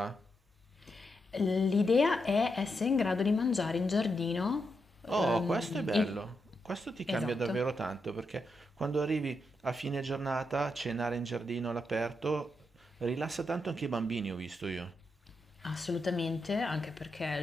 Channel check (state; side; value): normal; both; correlation 0.84